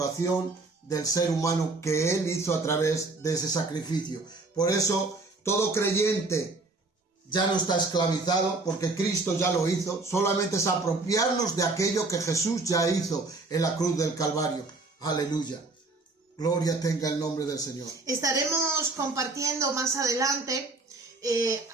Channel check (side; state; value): left; quieter; 3.4 dB